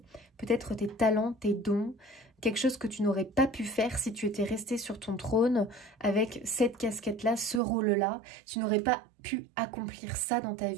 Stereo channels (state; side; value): drops out; left; at 7.6 s